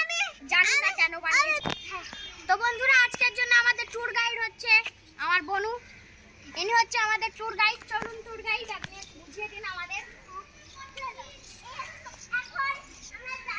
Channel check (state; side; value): identical; both; correlation 1.00